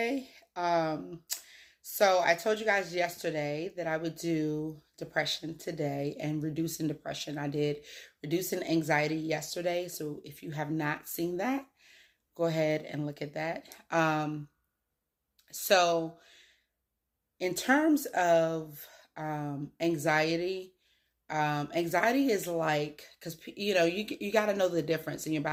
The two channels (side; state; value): both; identical; correlation 1.00